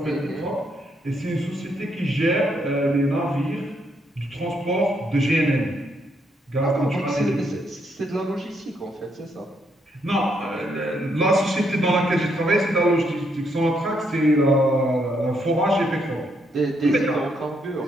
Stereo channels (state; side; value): normal; both; correlation 0.75